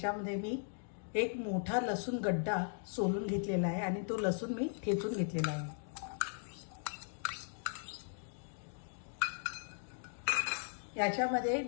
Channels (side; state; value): right; silent; digital silence